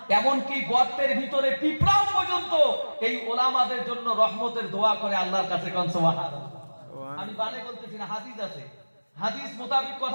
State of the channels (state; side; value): inverted; both; correlation -1.00